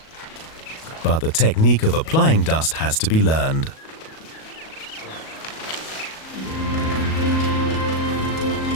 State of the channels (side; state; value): right; late; 37 ms